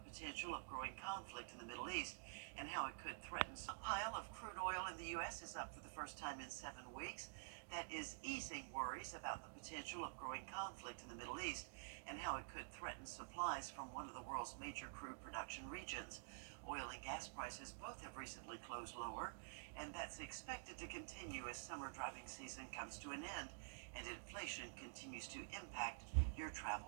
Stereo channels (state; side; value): silent; left; digital silence